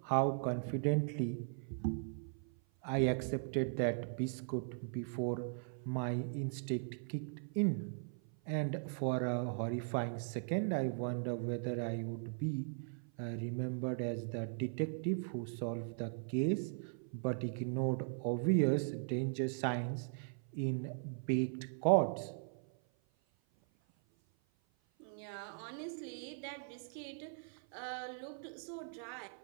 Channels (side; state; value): left; silent; 52 dB below the other